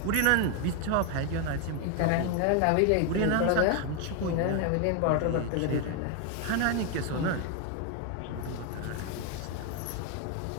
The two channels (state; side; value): different; both; correlation 0.01